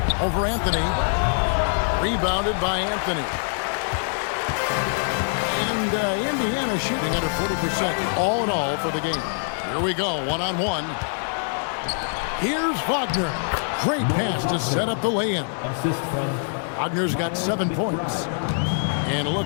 Over Anthony. Rebounded by Anthony. And Indiana shooting under 40% all in all for the game. Here we go, one-on-one. Here's Wagner. Great pass to set up the lay-in. Wagner's got 7 points. And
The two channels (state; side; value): silent; right; 63 dB below the other